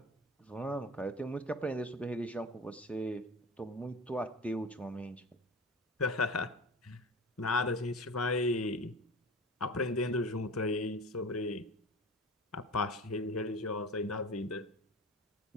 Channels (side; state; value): both; normal; correlation 0.34